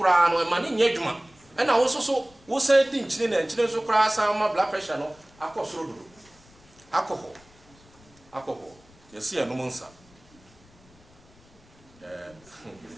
no e ma ne nya dwuma e na wo so wo say di enchini na enchini so kura san ma blood pressure no akosoro do alcohol yesi eno monsa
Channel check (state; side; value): noise; left; rumble, 27 dB below the sound